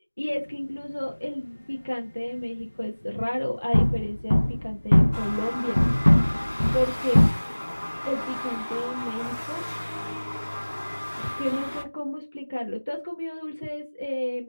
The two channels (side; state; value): both; inverted; correlation -1.00